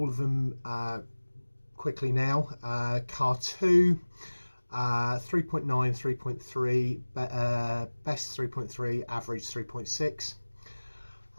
of them quickly now. Car 2, 3.9, 3.3, best 3.3, average 3.6.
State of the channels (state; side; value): inverted; both; correlation -1.00